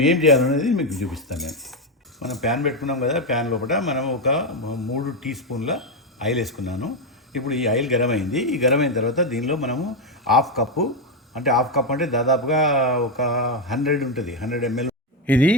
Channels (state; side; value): normal; both; correlation 0.06